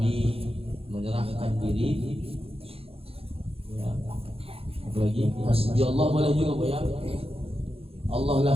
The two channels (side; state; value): left; late; 0.28 ms